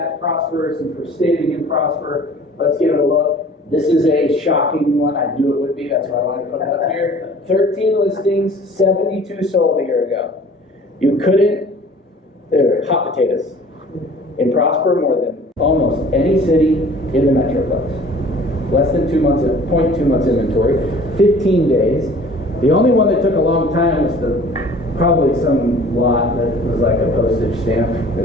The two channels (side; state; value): both; normal; correlation 0.48